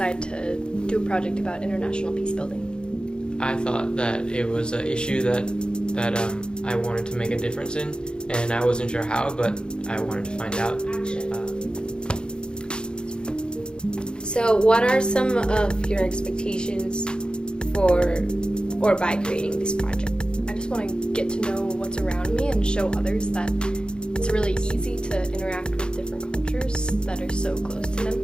to do a project about international peace building? I thought that it was an issue that I wanted to make a difference in, and I wasn't sure how, but I wanted to find out. So what are some of your expectations for or by creating this project? I just want to get to know what's around me and show others that it's really easy to interact with different cultures that are so close to them.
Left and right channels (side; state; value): right; late; 0.050 ms